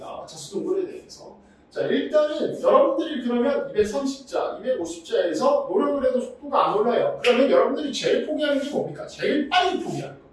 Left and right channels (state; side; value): identical; both; correlation 1.00